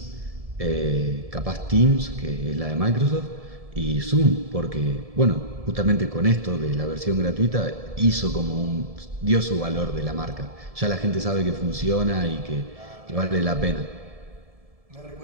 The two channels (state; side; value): late; left; 1.7 ms